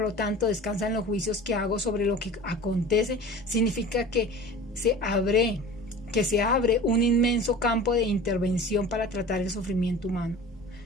lo tanto, descansa en los juicios que hago sobre lo que acontece, significa que se abre un inmenso campo de intervención para tratar el sufrimiento humano.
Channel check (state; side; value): normal; both; correlation 0.39